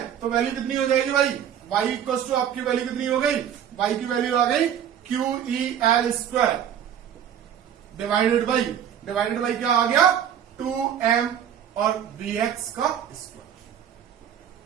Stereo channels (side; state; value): left; quieter; 9.4 dB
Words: तो वैल्यू कितनी हो जाएगी भाई, y इक्वल टू आपकी वैल्यू कितनी हो गई, y की वैल्यू आ गई QEL² डिवाइडेड बाई क्या आ गया, 2m और Vx का स्क्वायर।